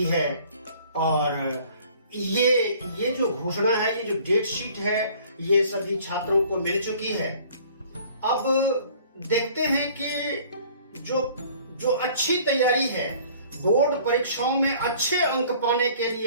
है और ये जो घोषणा है, ये जो डेट शीट है, ये सभी छात्रों को मिल चुकी है। अब देखते हैं कि जो अच्छी तैयारी है, बोर्ड परीक्षाओं में अच्छे अंक पाने के लिए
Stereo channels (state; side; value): inverted; both; correlation -0.53